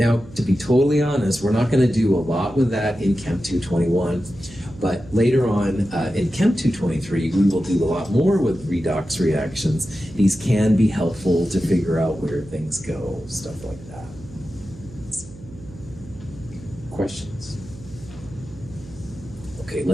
to be totally honest, we're not going to do a lot with that in Chem 221, but later on in Chem 223, we will do a lot more with redox reactions. These can be helpful to figure out where things go, stuff like that. Questions? Okay,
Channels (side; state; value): right; noise; hum, 18 dB below the sound